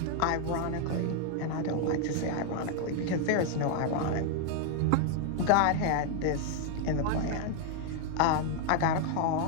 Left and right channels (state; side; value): different; both; correlation 0.00